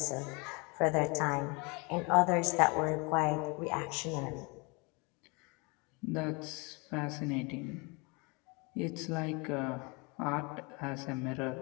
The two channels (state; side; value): quieter; right; 29.3 dB